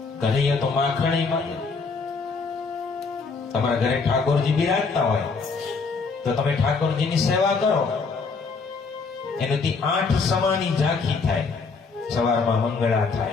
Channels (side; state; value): right; quieter; 4.6 dB